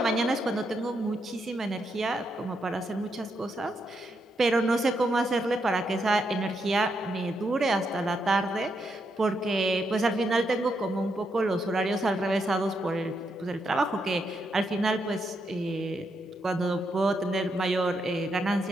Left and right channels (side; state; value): both; normal; correlation 0.80